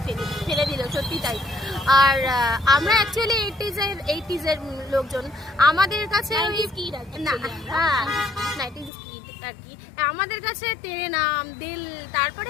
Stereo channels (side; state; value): right; drops out; at 8.9 s